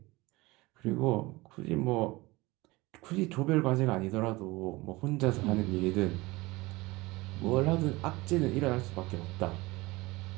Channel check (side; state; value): left; quieter; 21.6 dB